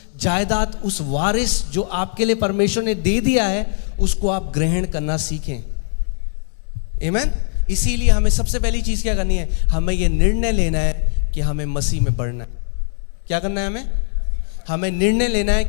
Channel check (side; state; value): right; silent; 66 dB below the other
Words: जायदाद, उस वारिस जो आपके लिए परमेश्वर ने दे दिया है, उसको आप ग्रहण करना सीखें। आमीन। इसीलिए हमें सबसे पहली चीज क्या करनी है? हमें यह निर्णय लेना है कि हमें मसीह में बढ़ना है। क्या करना है? हमें निर्णय लेना है